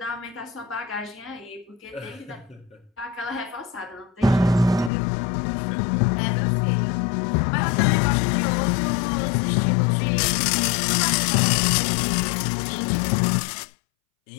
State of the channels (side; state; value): right; drops out; at 4.9 s